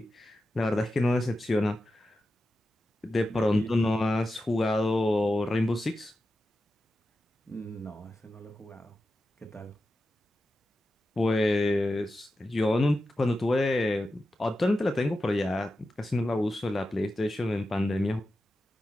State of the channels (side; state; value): both; normal; correlation 0.91